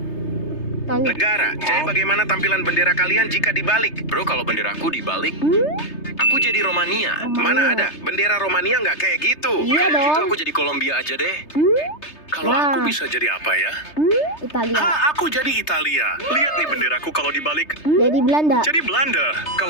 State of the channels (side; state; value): right; late; 3.3 ms